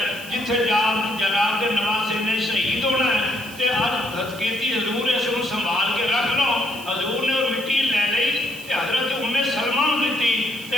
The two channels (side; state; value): right; noise; hiss, 17 dB below the sound